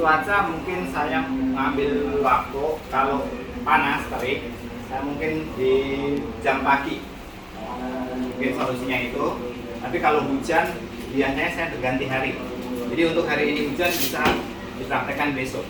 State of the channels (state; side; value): identical; both; correlation 1.00